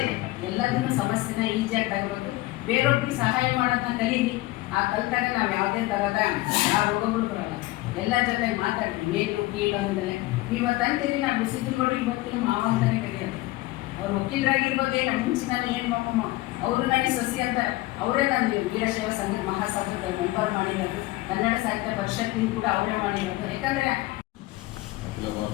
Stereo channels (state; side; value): quieter; right; 19.2 dB